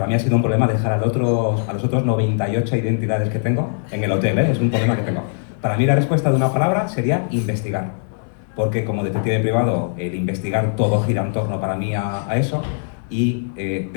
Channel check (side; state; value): right; silent; digital silence